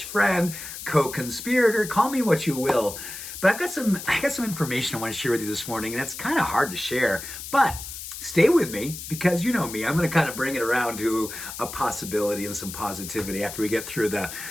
co-conspirator. Call me what you will. But I got some information I want to share with you this morning, and it's kind of hard to share. But stay with me, because you know me. I'm going to kind of bring it around to a possibility and some positivity after we get through the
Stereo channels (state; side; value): noise; left; hiss, 10 dB below the sound